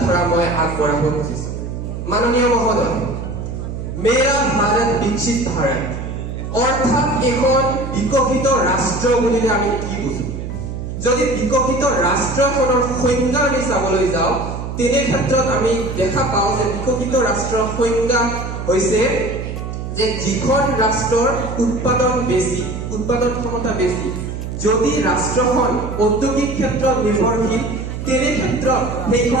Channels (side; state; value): right; noise; hum, 6 dB below the sound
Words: মই আগবঢ়াব খুজিছো। মাননীয় মহোদয়, মেৰা ভাৰত বিকশিত ভাৰত অৰ্থাৎ এখন বিকশিত ৰাষ্ট্ৰ বুলিলে আমি কি বুজো? যদি বিকশিত ৰাষ্ট্ৰখনৰ সংজ্ঞা আমি চাবলৈ যাওঁ, তেনে ক্ষেত্ৰত আমি দেখা পাওঁ যে বিকশিত ৰাষ্ট্ৰৰ সংজ্ঞা হৈছে যে যিখন ৰাষ্ট্ৰৰ উৎপাদন বেছি, উৎপাদন ক্ষমতা বেছি। যদি ৰাষ্ট্ৰখন ঔদ্যোগিক ক্ষেত্ৰত নিৰ্ভৰশীল, তেনে ক্ষেত্ৰত